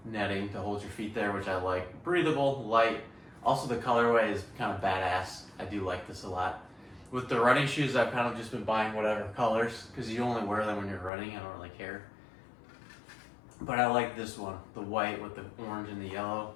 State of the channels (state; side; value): drops out; right; at 11.1 s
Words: netting to hold your feet there, which I like. Breathable, light. Also, the colorway is kind of badass. I do like this a lot. With the running shoes, I've kind of just been buying whatever colors because you only wear them when you're running. I don't really care. But I like this one, the white with the orange and the yellow.